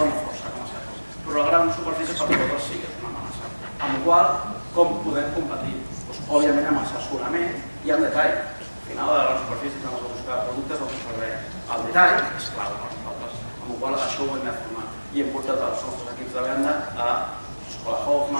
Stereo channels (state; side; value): inverted; both; correlation -1.00